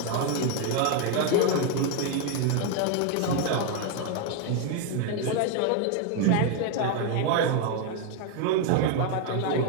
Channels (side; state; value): both; different; correlation 0.01